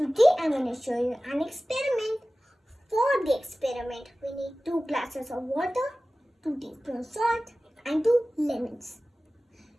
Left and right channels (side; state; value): both; normal; correlation 0.97